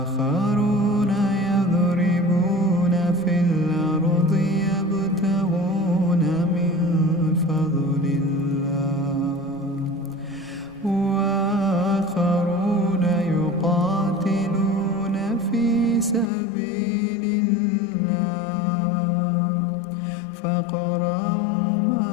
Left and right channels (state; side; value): drops out; right; at 16.3 s